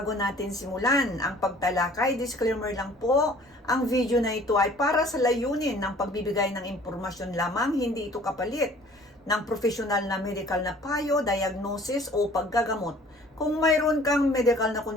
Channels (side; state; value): both; normal; correlation 0.52